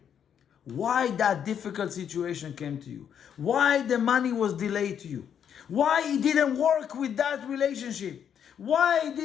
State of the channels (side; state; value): right; quieter; 8.5 dB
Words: why that difficult situation came to you, why the money was delayed to you, why it didn't work with that relationship, why